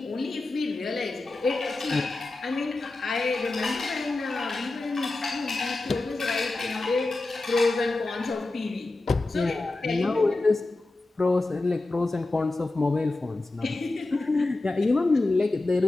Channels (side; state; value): right; quieter; 3.1 dB